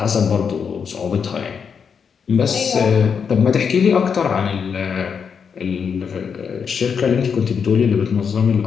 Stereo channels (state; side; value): quieter; right; 6.5 dB